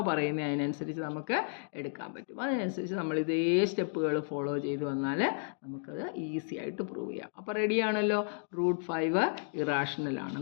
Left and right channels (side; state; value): right; silent; digital silence